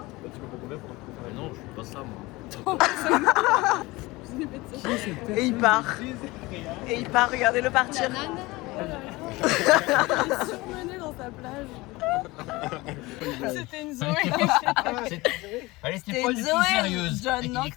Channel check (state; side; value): quieter; right; 21.5 dB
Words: tu peux pas combien pour Mais non, je suis pas ça moi. Et il part. Et il part, regardez-le partir. Il est surmené dans sa plage. C'était une Zoé. Allez, C'était c'était pas une du tout Zoé, sérieuse. John, non, que